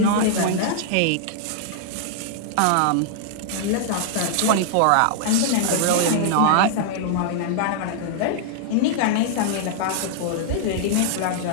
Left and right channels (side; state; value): both; different; correlation -0.01